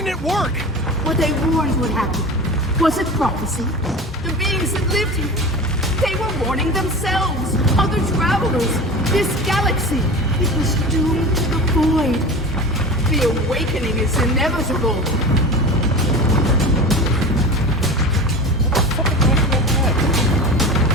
it work? What they warned would happen. Was it prophecy? The beings that lived here. They were warning themselves, other travelers, this galaxy. It was doomed to the void. The awakening is inevitable.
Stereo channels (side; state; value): both; normal; correlation 0.31